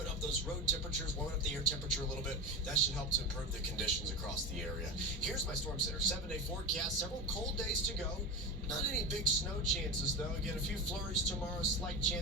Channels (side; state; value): both; normal; correlation 0.23